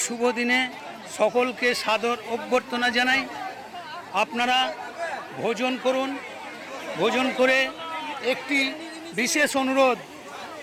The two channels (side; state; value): both; identical; correlation 1.00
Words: শুভ দিনে সকলকে সাদর অভ্যর্থনা জানাই। আপনারা ভোজন করুন। ভোজন করে একটি বিশেষ অনুরোধ,